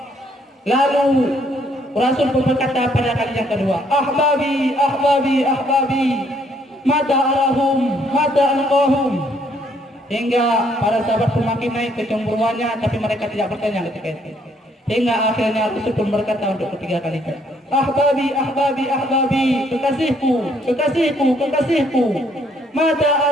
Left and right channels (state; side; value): normal; both; correlation 0.68